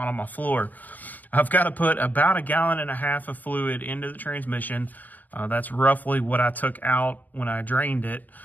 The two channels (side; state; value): right; late; 0.083 ms